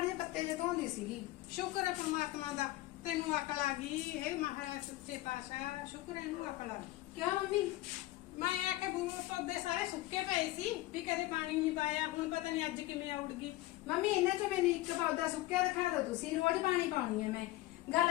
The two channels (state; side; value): quieter; right; 17.3 dB